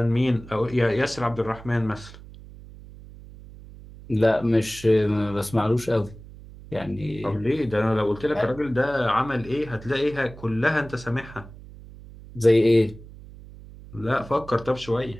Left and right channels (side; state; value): right; noise; hum, 18 dB below the sound